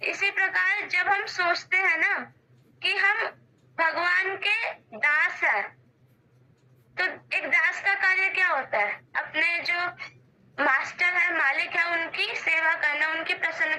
इसी प्रकार जब हम सोचते हैं ना कि हम भगवान के दास हैं, तो एक दास का कार्य क्या होता है? अपने जो मास्टर है, मालिक है, उनकी सेवा करना, उनकी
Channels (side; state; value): both; identical; correlation 1.00